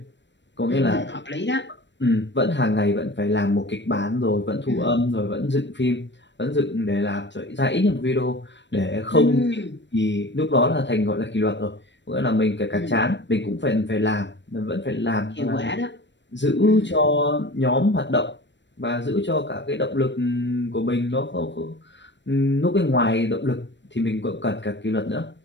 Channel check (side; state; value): right; late; 0.53 ms